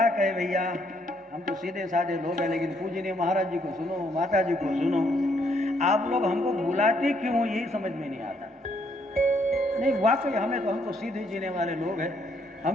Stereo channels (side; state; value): both; normal; correlation 0.71